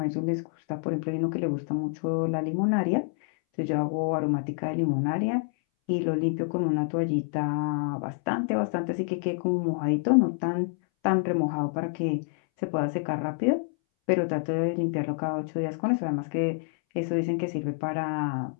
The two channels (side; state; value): right; silent; 60 dB below the other